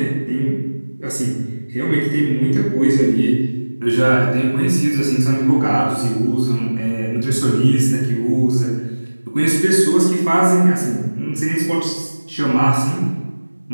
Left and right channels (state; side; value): inverted; both; correlation -1.00